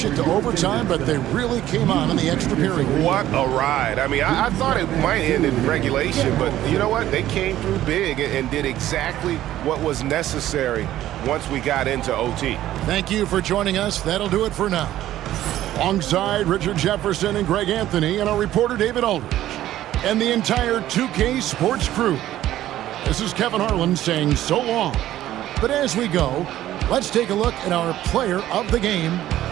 it to overtime, but they really came on in the extra period. What a ride. I mean, I thought it might end in regulation, but you know what? They came through big and did exactly what was necessary once we got into OT. Thank you for joining us. That'll do it for now. Alongside Richard Jefferson and Greg Anthony and our reporter David Aldridge and the entire 2K Sports crew. This is Kevin Harlan saying so long. But as we go, let's take a look at our player of the game,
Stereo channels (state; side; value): quieter; left; 13.5 dB